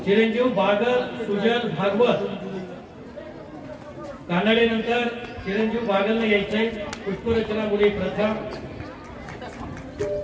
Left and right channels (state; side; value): identical; both; correlation 1.00